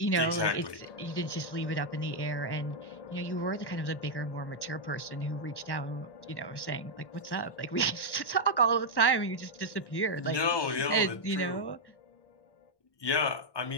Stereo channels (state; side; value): late; right; 1.1 ms